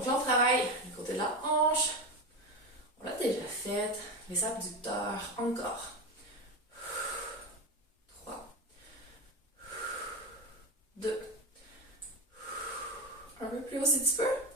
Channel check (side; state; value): both; normal; correlation 0.19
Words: là, on travaille le côté de la hanche. On l'a déjà fait. Les abducteurs, encore. 3, 2, un peu plus haut si tu peux.